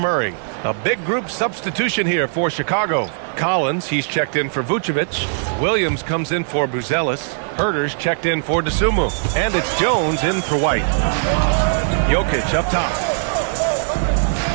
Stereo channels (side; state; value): left; silent; digital silence